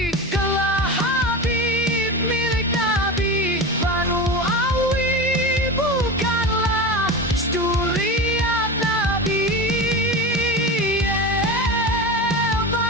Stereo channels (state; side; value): normal; both; correlation 0.26